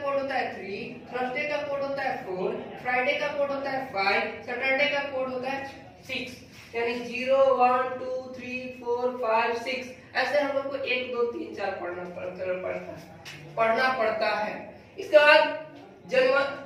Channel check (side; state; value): both; identical; correlation 1.00